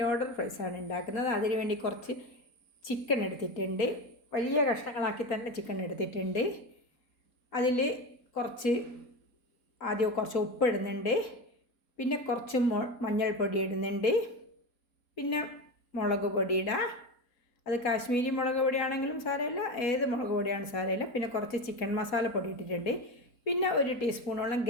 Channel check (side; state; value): right; late; 4.1 ms